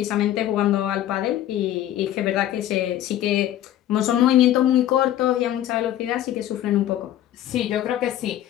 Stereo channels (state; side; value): quieter; right; 12.4 dB